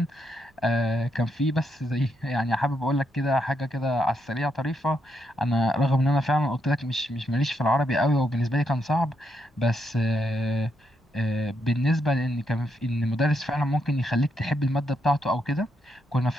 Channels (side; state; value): both; normal; correlation 0.79